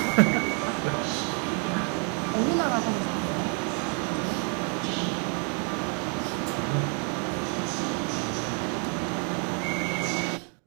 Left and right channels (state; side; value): quieter; left; 39.4 dB